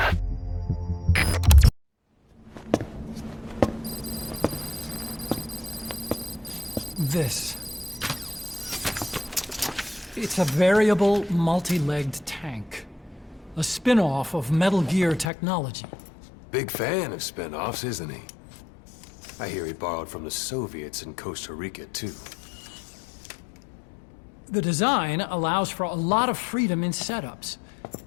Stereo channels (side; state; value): right; drops out; at 15.3 s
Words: This. It's a variable, multi-legged tank. A spin-off of Metal Gear technology. Big fan of spin-offs, isn't he? I hear he borrowed from the Soviets in Costa Rica, too. The design allows for a lot of freedom in setups.